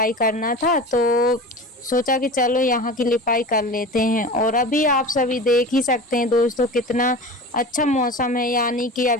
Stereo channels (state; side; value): normal; both; correlation 0.33